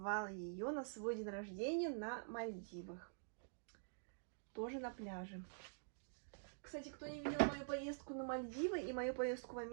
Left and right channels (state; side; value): silent; left; digital silence